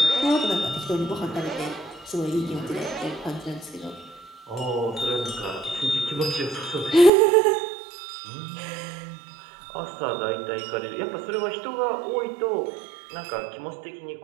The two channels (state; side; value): drops out; left; at 7.1 s